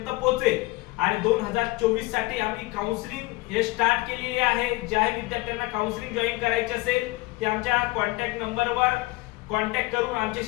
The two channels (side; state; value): right; quieter; 22.0 dB